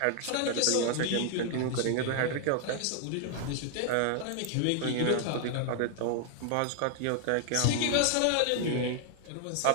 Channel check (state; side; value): different; both; correlation 0.00